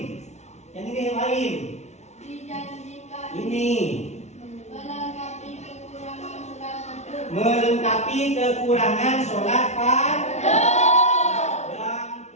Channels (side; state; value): right; late; 0.32 ms